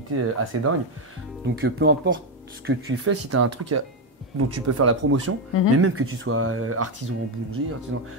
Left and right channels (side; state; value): both; normal; correlation 0.06